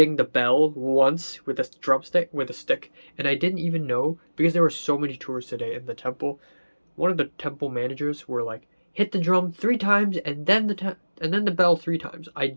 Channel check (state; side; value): inverted; both; correlation -1.00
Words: the bell once with a stick, and I didn't even know, because there were so many tourists today in the temple. One of the temple managers were like, hit the drum 3 times and then the bell 3 times. I